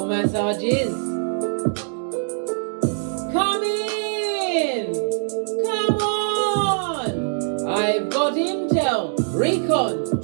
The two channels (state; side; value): silent; left; 64 dB below the other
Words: massages. Come in! Come on! I've got intel.